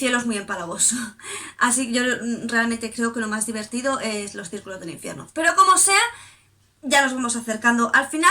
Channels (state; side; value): identical; both; correlation 1.00